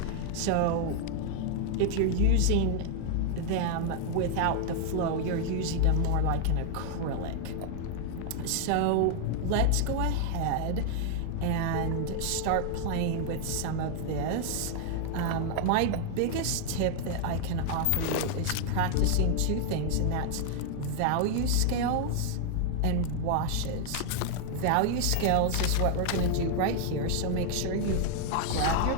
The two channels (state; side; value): different; both; correlation 0.00